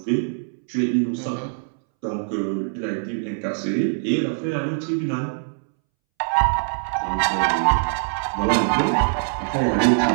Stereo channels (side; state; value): left; silent; 64 dB below the other